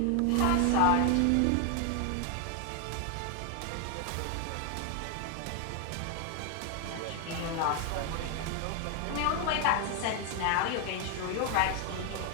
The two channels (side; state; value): both; different; correlation 0.01